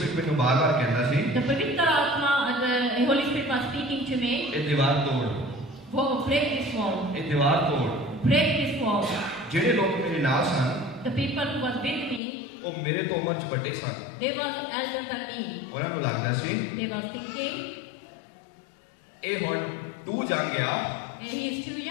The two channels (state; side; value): drops out; right; at 12.2 s